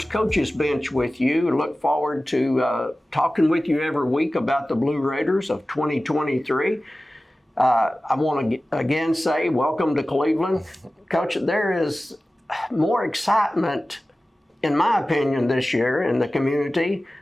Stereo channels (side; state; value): both; normal; correlation 0.96